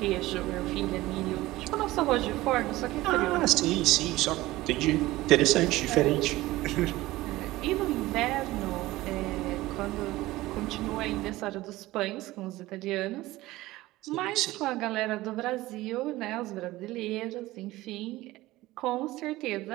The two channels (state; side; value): quieter; left; 18.0 dB